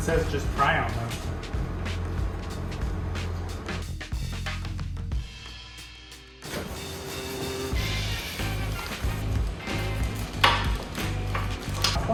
just pry on them.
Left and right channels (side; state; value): both; identical; correlation 1.00